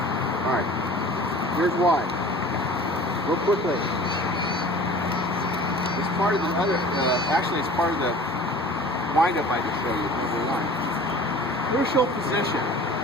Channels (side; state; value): both; normal; correlation 0.44